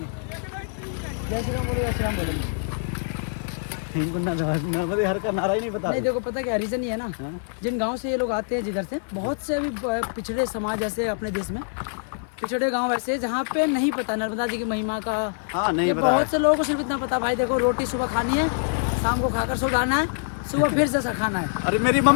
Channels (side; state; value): right; silent; 56 dB below the other